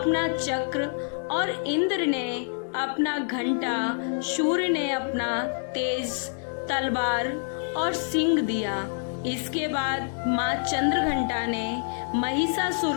चक्र और इंद्र ने अपना घंटा, सूर्य ने अपना तेज तलवार और सिंह दिया। इसके बाद माँ चंद्रघंटा ने महिषासुर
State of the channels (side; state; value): right; silent; digital silence